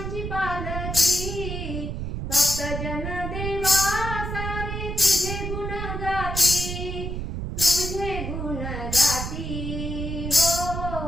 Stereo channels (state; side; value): noise; right; rumble, 4 dB below the sound